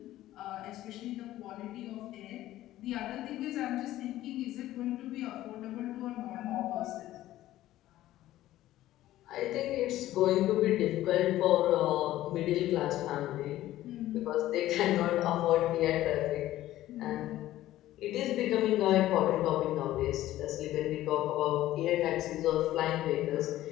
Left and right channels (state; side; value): quieter; right; 14.6 dB